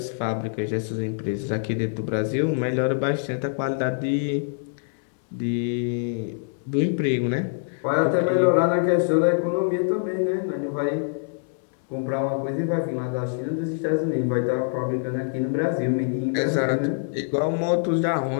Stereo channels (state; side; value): silent; right; digital silence